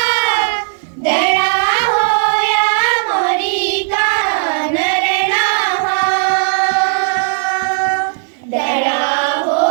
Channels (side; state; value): left; silent; digital silence